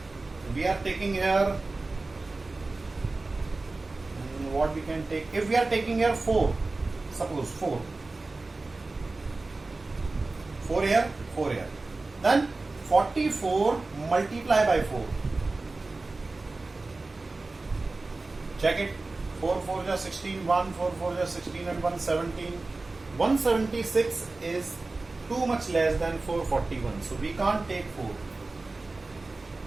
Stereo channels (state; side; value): quieter; left; 3.4 dB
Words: we are taking here, what we can take, if we are taking here 4, suppose 4 here, 4 here, then 44 multiply by 4. Check it. 4 4 is 16, 1 4 4 is 16 and 1 17. 176 is too much less than 441, so we can't take 4.